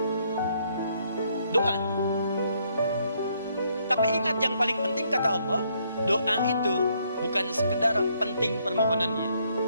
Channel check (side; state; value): both; inverted; correlation -0.71